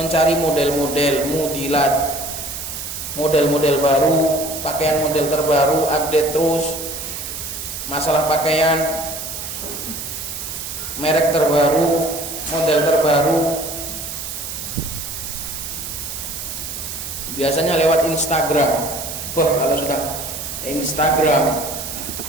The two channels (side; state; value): right; noise; hiss, 7 dB below the sound